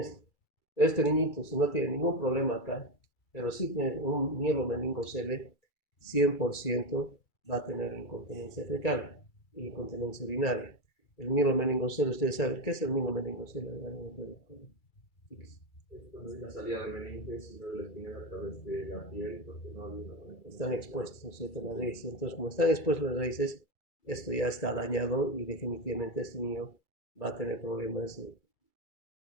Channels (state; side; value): late; right; 2.3 ms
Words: Este niñito, si no tiene ningún problema acá, pero sí tiene un mielomeningocele, 100% va a tener incontinencia fecal y incontinencia urinaria. El mielomeningocele, ustedes saben, ¿qué es el mielomeningocele? Es la salida de meninges y luego la espina a través de la piel porque no había una están expuestos, ¿no es cierto?, las raíces. Entonces, como están expuestos las raíces, esto ya está dañado y definitivamente este niño va a tener problemas